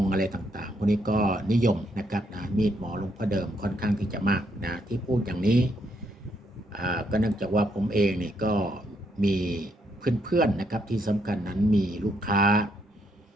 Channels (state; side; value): normal; both; correlation 0.74